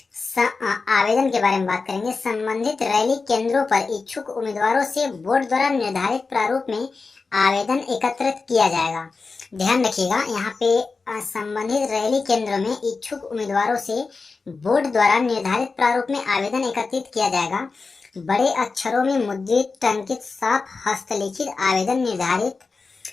आवेदन के बारे में बात करेंगे। संबंधित रैली केंद्रों पर इच्छुक उम्मीदवारों से बोर्ड द्वारा निर्धारित प्रारूप में आवेदन एकत्रित किया जाएगा। ध्यान रखिएगा। यहाँ पे संबंधित रैली केंद्रों में इच्छुक उम्मीदवारों से बोर्ड द्वारा निर्धारित प्रारूप में आवेदन एकत्रित किया जाएगा। बड़े अक्षरों में मुद्रित टंकित साफ हस्तलिखित आवेदन निर्धारित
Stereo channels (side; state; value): right; quieter; 4.3 dB